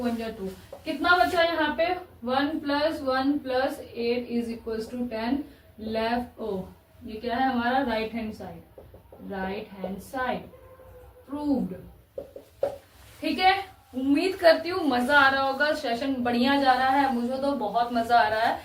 1 जा 2। कितना बचा यहाँ पे, 1 + 1 + 8 इज इक्वल टू 10 लेफ्ट। ओ ये क्या है हमारा, right hand side, right hand side proved. ठीक है, उम्मीद करती हूँ मजा आ रहा होगा, सेशन बढ़िया जा रहा है, मुझे तो बहुत मजा आ रहा है।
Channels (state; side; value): identical; both; correlation 1.00